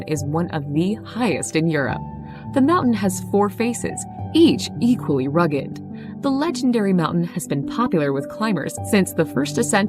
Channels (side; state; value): both; identical; correlation 1.00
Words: is one of the highest in Europe. The mountain has 4 faces, each equally rugged. The legendary mountain has been popular with climbers since the first